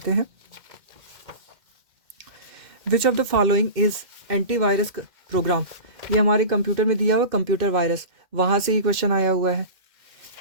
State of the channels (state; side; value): late; left; 2.1 ms